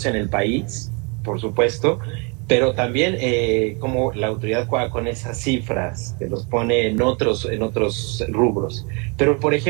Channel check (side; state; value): left; quieter; 32.0 dB